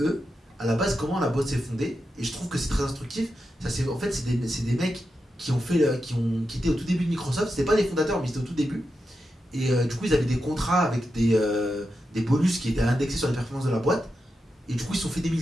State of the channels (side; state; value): both; normal; correlation 0.88